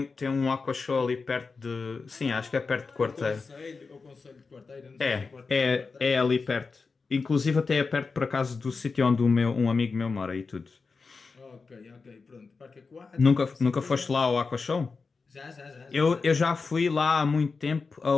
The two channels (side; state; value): right; quieter; 4.5 dB